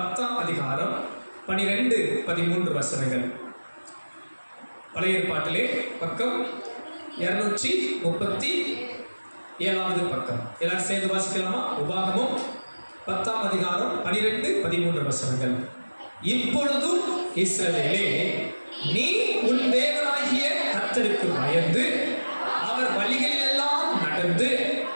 அதிகாரம் 12, 13 வசனங்கள். பழைய ஏற்பாட்டிலே பக்கம் 237வது பக்கம். எல்லாரும் சேர்ந்து வாசிக்கலாமா? உபாகமம் 10ஆம் அதிகாரம் 12, 13 வசனங்கள். இப்பொழுதும் இஸ்ரவேலே, நீ உன் தேவனாகிய கர்த்தருக்கு பயந்து அவர் வழிகளில் எல்லாம் நடந்து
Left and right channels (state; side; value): inverted; both; correlation -1.00